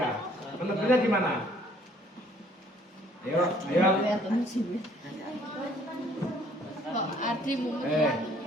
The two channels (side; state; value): both; normal; correlation 0.60